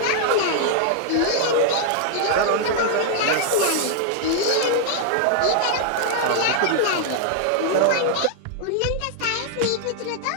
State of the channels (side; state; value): both; different; correlation 0.00